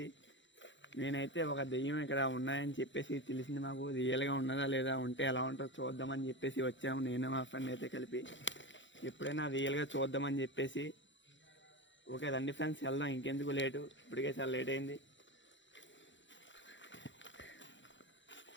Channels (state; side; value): late; right; 0.54 ms